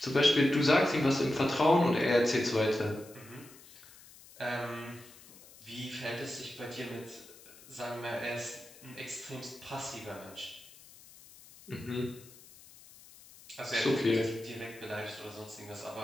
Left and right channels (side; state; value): left; noise; hiss, 21 dB below the sound